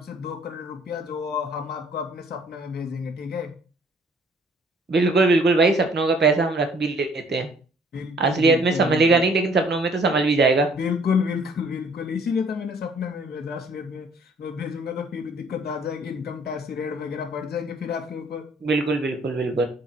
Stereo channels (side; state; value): both; normal; correlation 0.59